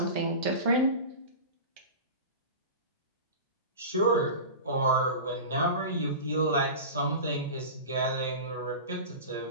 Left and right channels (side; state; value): both; inverted; correlation -0.30